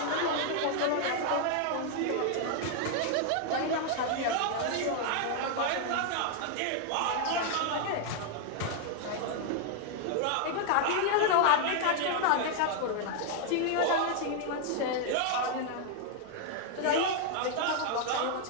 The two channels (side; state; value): both; different; correlation 0.00